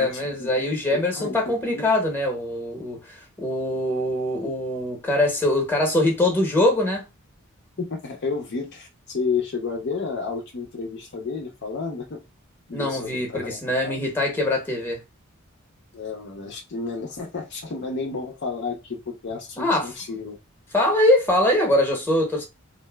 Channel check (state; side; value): normal; both; correlation 0.39